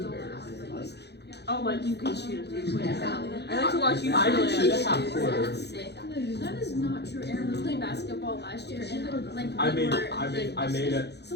Oh, like you can shoot a 3-point. I like to watch you I shoot can shoot it. a half quarter. That is not true. Aaron was playing basketball last year, and like I we made were, I made it.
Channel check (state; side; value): late; right; 0.49 ms